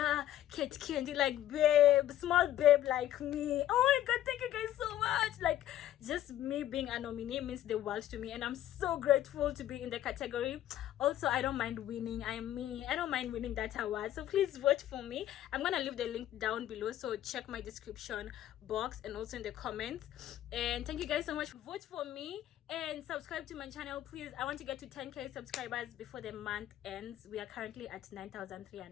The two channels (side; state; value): right; quieter; 12.6 dB